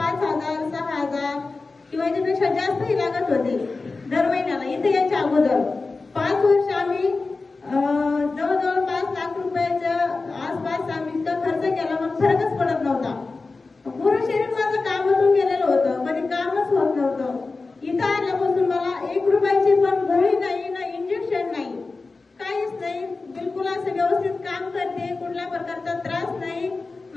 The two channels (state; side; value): quieter; right; 3.8 dB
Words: 6,000 किंवा याच्यापेक्षा जास्तही लागत होते दर महिन्याला. इथे याच्या अगोदर 5 वर्ष आम्ही जवळजवळ 5 लाख रुपयाच्या आसपास आम्ही इतका खर्च केला, पण फरकच पडत नव्हता. पूर्ण शरीर माझं कामातून गेलेलं होतं, कधी कामच होत नव्हतं. इथं आल्यापासून मला 1 रुपयाची पण गोळी नाही, ना इंजेक्शन नाही, काहीच नाही. बिलकुल असं व्यवस्थित काम करते, कुठल्या प्रकारचा त्रास नाही.